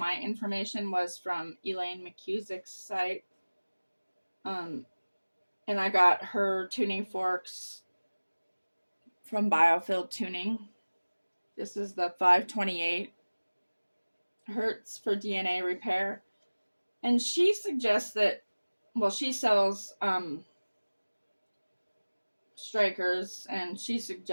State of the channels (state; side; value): inverted; both; correlation -1.00